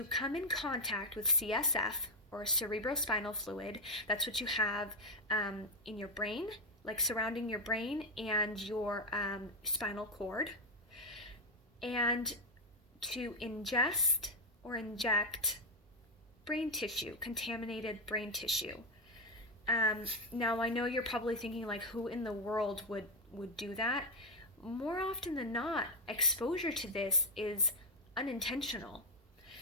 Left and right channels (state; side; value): normal; both; correlation 0.04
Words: come in contact with CSF or cerebrospinal fluid. That's what you have in your brain, like surrounding your brain and your spinal cord, and to ingest or inject brain tissue, contaminated brain tissue. Now I know you're probably thinking like, who in the world would do that? More often than not, exposure to this is unintentional.